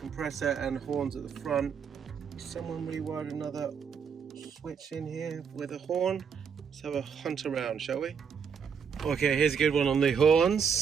and horns at the front. Someone rewired another switch in here with a horn. Let's have a hunt around, shall we? Okay, here's a good one on the horns.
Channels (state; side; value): quieter; left; 6.7 dB